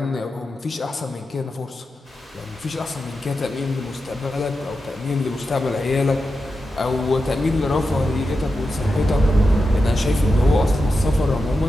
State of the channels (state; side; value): normal; both; correlation 0.90